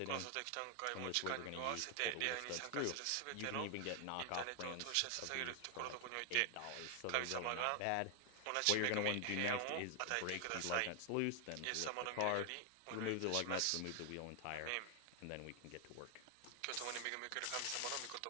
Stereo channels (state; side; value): different; both; correlation 0.00